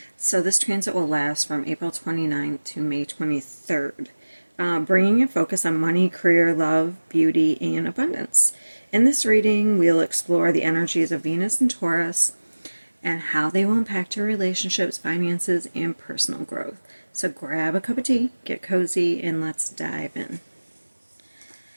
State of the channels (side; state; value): both; inverted; correlation -1.00